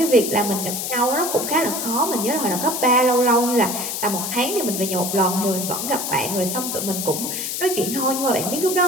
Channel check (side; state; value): left; noise; hiss, 3 dB below the sound